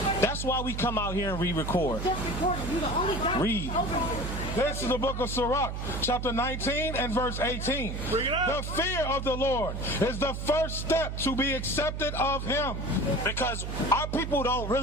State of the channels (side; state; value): right; noise; hum, 5 dB below the sound